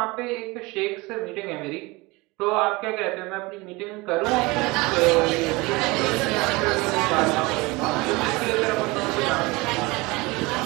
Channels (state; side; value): quieter; left; 23.6 dB